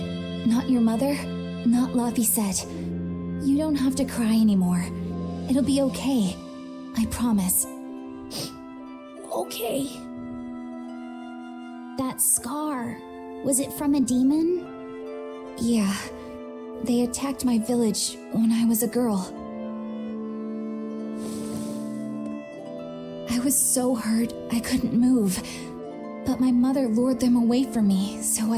not your mother, not Laphicet. You don't have to cry anymore. It'll be okay. I promise. Okay. That scar, was it from a demon? Yeah. They attacked my village when I was a girl. I was so hurt I couldn't move. But my mother lured them away from me so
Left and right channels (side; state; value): both; identical; correlation 1.00